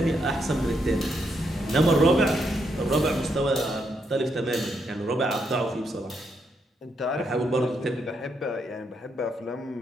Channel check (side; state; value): both; normal; correlation 0.78